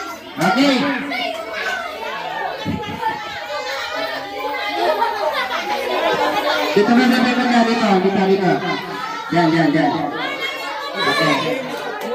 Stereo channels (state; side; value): identical; both; correlation 1.00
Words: Okay. Dito na natin banda dito. Dito, dito. Yan, yan, yan. Okay.